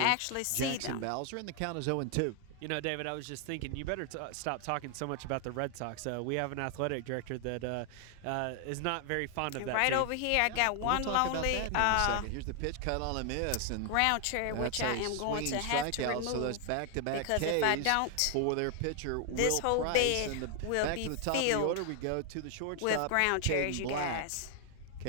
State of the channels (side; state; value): both; different; correlation 0.00